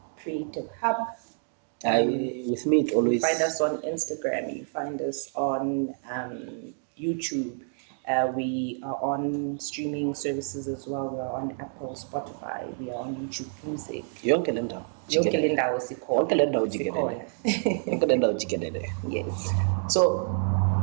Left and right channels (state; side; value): silent; left; 59 dB below the other